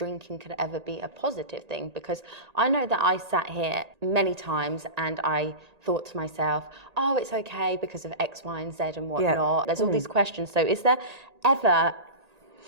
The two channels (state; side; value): late; left; 1.8 ms